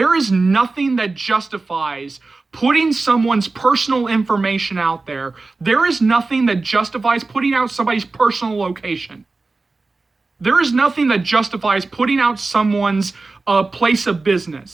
is nothing that justifies putting someone's personal information out there. There is nothing that justifies putting out somebody's personal location. There is nothing that justifies putting out someone's place of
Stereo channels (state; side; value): quieter; left; 3.6 dB